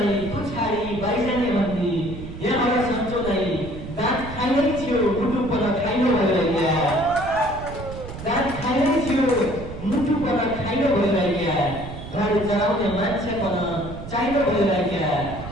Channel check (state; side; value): noise; right; rumble, 11 dB below the sound